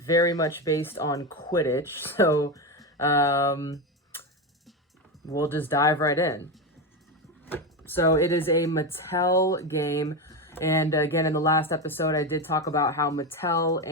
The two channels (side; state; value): both; normal; correlation 0.15